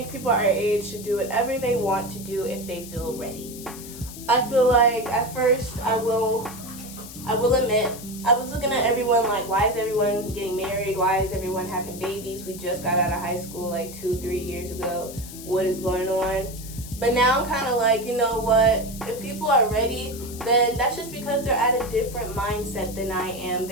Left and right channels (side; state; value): left; noise; hiss, 14 dB below the sound